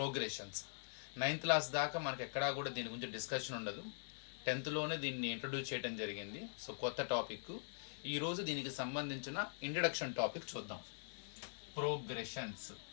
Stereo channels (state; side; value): silent; right; digital silence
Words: 9th క్లాస్ దాకా మనకు ఎక్కడా కూడా దీని గురించి డిస్కషన్ ఉండదు. 10thలోనే దీన్ని ఇంట్రడ్యూస్ చేయడం జరిగింది. కొత్త టాపిక్. ఈరోజు దీనికి సంబంధించిన ఇంట్రడక్షన్ టాపిక్ చూద్దాం. ప్రోగ్రెషన్స్.